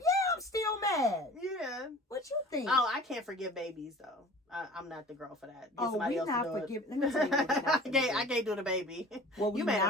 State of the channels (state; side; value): normal; both; correlation 0.43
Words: I'm still mad. Yeah. What you think? Oh, I can't forgive babies, though. I'm not the girl for that. We not forgiving. Let me tell you what we not do. I can't do the baby. What we